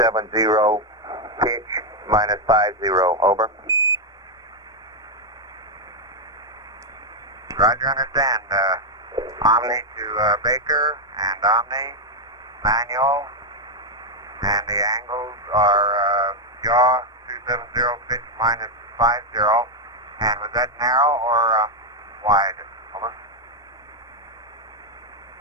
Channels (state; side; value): normal; both; correlation 0.00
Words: pitch -50, over. Roger, understand. Omni to Baker and Omni, manual, and the angles are yaw 270, pitch -50. And was that narrow or wide? Over.